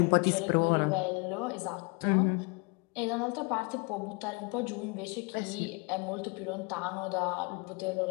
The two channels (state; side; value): quieter; right; 31.1 dB